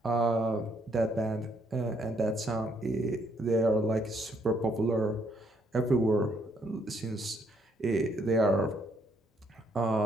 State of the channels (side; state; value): both; normal; correlation 0.70